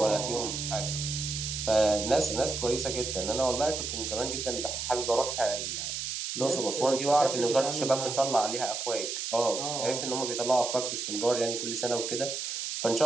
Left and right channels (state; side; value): noise; right; hiss, 4 dB below the sound